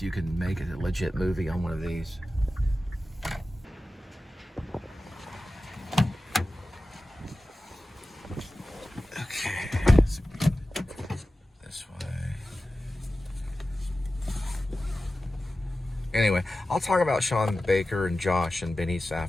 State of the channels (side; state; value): both; normal; correlation 0.94